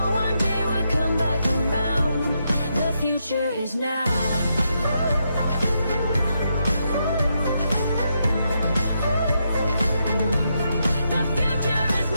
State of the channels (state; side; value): inverted; both; correlation -0.81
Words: one day we'll come back around. The future is now.